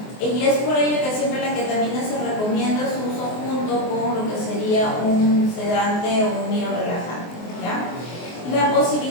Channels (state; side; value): late; right; 24 ms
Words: y es por ello que siempre la ketamina se recomienda su uso junto con lo que sería un sedante o un miorelajante, ¿ya? La